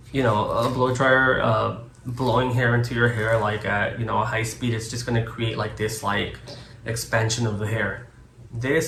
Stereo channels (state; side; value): identical; both; correlation 1.00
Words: you know, a blow dryer blowing hair into your hair like at, you know, a high speed, it's just going to create like this like expansion of the hair.